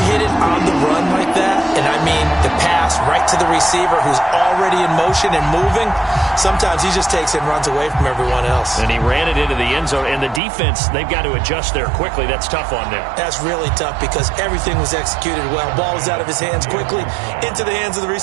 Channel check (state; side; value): drops out; left; at 10.4 s